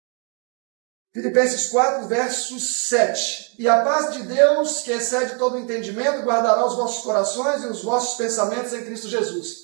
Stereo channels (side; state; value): left; quieter; 37.7 dB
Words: Filipenses 4, verso 7. E a paz de Deus, que excede todo o entendimento, guardará os vossos corações e os vossos pensamentos em Cristo